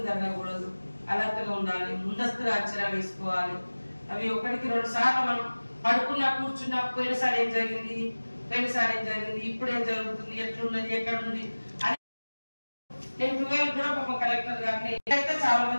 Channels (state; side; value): inverted; both; correlation -1.00